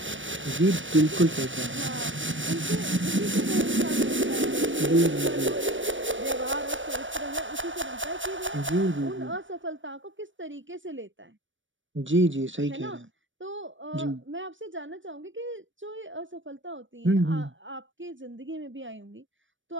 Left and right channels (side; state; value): left; late; 0.56 ms